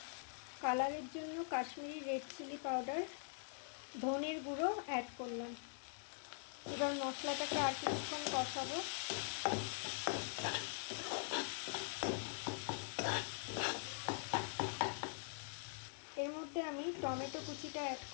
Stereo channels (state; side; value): silent; right; digital silence